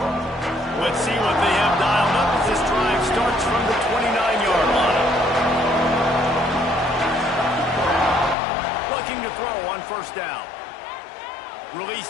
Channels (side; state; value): right; drops out; at 8.3 s